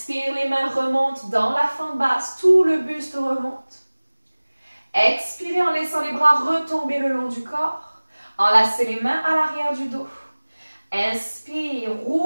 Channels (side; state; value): both; inverted; correlation -1.00